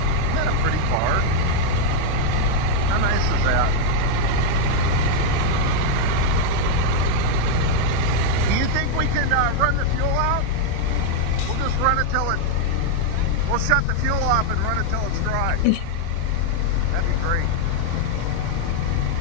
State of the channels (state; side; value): different; both; correlation 0.00